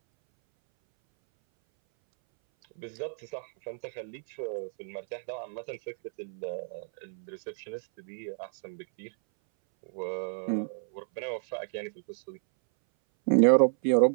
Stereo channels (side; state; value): left; silent; 57 dB below the other